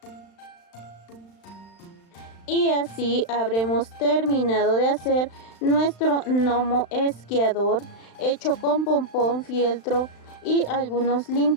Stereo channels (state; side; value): late; right; 35 ms